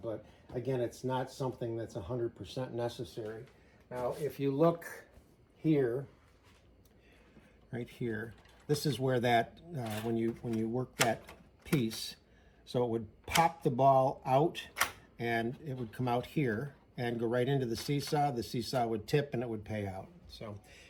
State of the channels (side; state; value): both; identical; correlation 1.00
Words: again, it's not something that's 100% necessary. Now, if you look here, right here, this is where that, when you work that piece, so it would pop the ball out and it would come out here and go right into the seesaw would tip and it would pay out. So